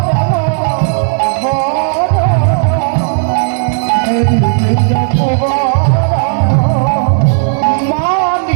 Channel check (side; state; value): left; silent; digital silence